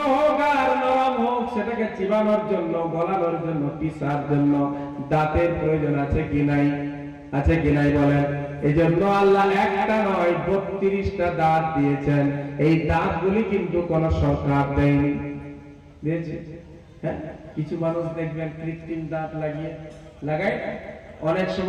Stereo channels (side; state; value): both; identical; correlation 1.00